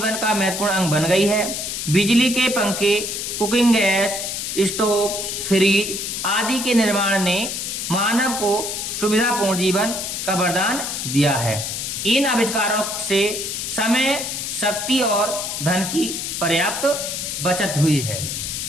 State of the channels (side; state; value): left; noise; hiss, 4 dB below the sound